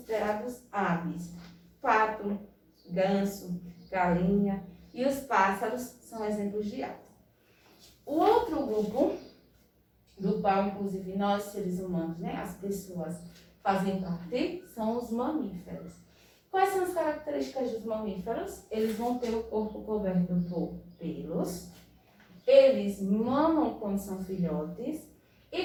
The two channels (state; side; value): identical; both; correlation 1.00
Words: aves? Pato, ganso, galinha e os pássaros são exemplos de aves. O outro grupo, do qual inclusive nós seres humanos, né, as pessoas fazem parte, são os mamíferos. Quais são as características dos mamíferos? Eles vão ter o corpo coberto por pelos, eles mamam quando são filhotes